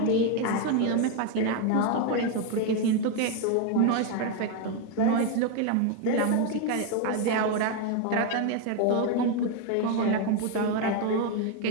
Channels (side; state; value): both; different; correlation 0.01